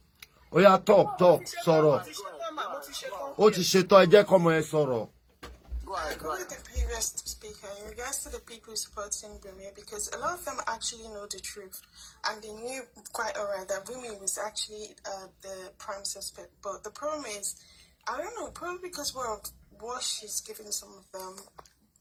Ó yá talk sọ̀rọ̀. Ó ti ṣetán ẹ jẹ́ kọ́mọ ẹ sọ̀rọ̀. I agree with the previous speaker in regards to the people supporting Bumi because a lot of them actually know the truth and they knew quite alright that Bumi was actually the prime suspect. But the problem is, I don't know, probably because of what she's giving some of them,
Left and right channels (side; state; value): both; identical; correlation 1.00